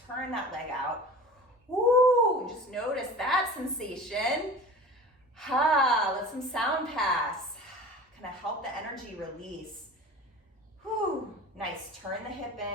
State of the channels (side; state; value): both; normal; correlation 0.38